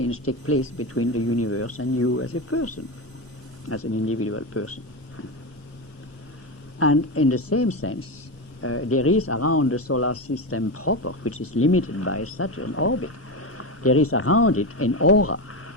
takes place between the universe and you as a person, as an individual person. And in the same sense, there is around the solar system proper, which is limited by Saturn orbit, there is around it an aura,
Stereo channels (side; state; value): both; normal; correlation 0.16